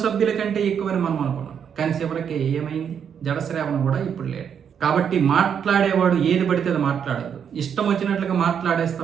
సభ్యుల కంటే ఎక్కువని మనం అనుకున్నాం, కానీ చివరికి ఏమైంది? జడశ్రావణ కూడా ఇప్పుడు లేడు. కాబట్టి మాట్లాడేవాడు ఏది పడితే అది మాట్లాడదు. ఇష్టం వచ్చినట్లుగా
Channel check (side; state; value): left; quieter; 7.8 dB